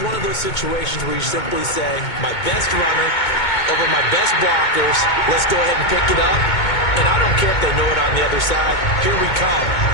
one of those situations where you simply say, my best runner over my best blockers. Let's go ahead and pick it up. And I don't care if they know it on the other side. Here we come,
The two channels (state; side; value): late; right; 2.2 ms